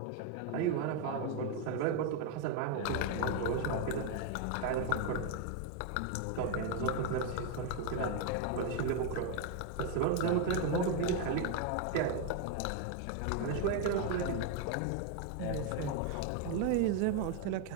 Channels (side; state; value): both; different; correlation 0.01